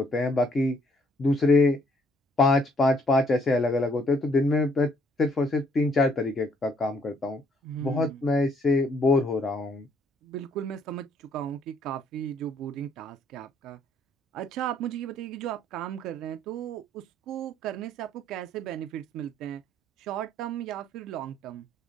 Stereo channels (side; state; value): both; normal; correlation 0.66